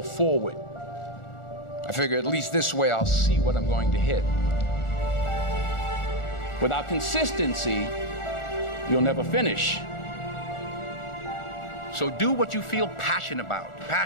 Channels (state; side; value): late; right; 1.4 ms